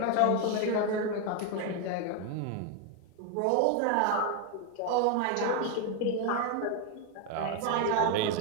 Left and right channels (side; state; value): both; different; correlation 0.01